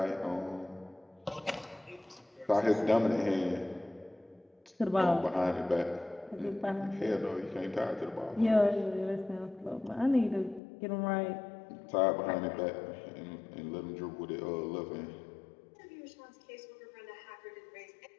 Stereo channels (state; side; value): drops out; right; at 10.6 s